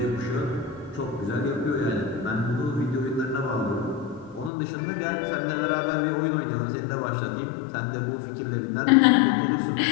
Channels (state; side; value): drops out; right; at 4.5 s